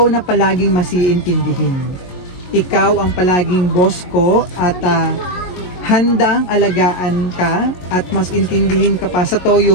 na palaging masiintindihin. Ikaw ang palaging boss ko at handang alagaan ka at mas intindihin ka pa sa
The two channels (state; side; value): late; right; 22 ms